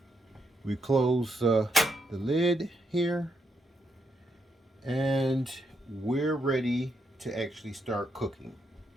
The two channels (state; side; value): normal; both; correlation 0.79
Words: we close the lid here. And we're ready to actually start cooking.